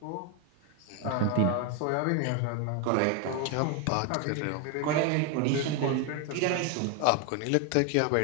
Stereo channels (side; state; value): both; different; correlation 0.01